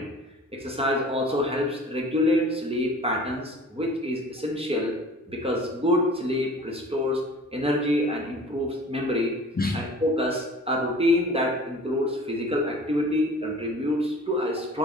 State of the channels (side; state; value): both; normal; correlation 0.45